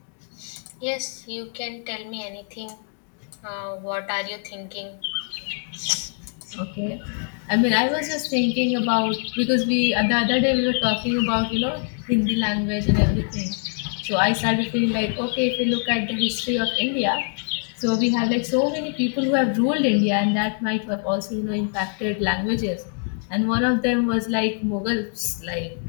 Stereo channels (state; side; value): silent; right; 55 dB below the other